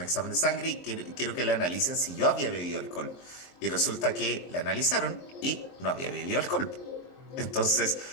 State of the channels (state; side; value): late; right; 23 ms